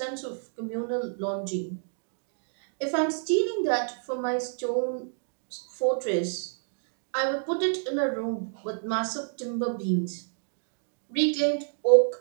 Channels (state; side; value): silent; left; digital silence